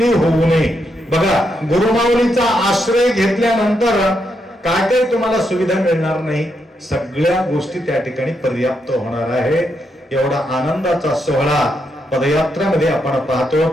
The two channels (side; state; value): both; normal; correlation 0.81